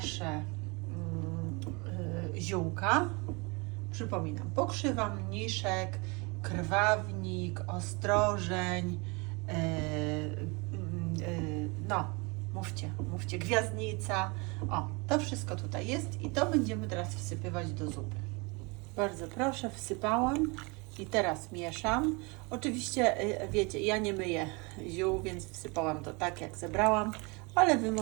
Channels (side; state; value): left; quieter; 28.8 dB